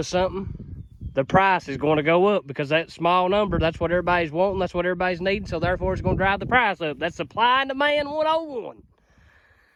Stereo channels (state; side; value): identical; both; correlation 1.00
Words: something, the price is going to go up, because that small number, that's what everybody's wanting, that's what everybody's needing, so therefore it's going to drive the price up. That's supply and demand 101.